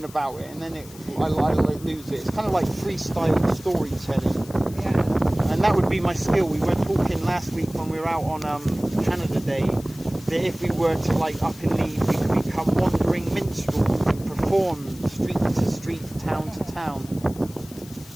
about it, and then I lose it. It's kind of like freestyle storytelling. Yeah. And that would be my skill. We were talking last week when we were out on Canada Day that if we were to like up and leave, we could become wandering minstrels and perform street to street, town to town.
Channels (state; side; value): noise; left; hiss, 20 dB below the sound